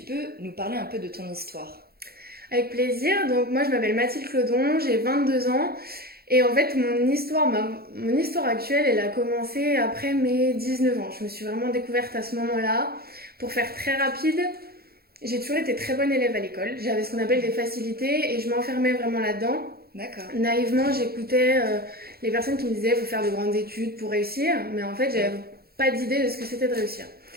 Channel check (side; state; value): left; late; 0.45 ms